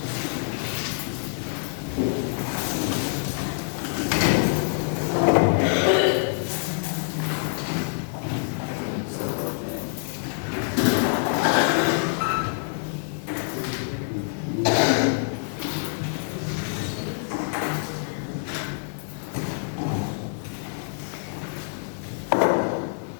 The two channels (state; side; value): silent; right; 61 dB below the other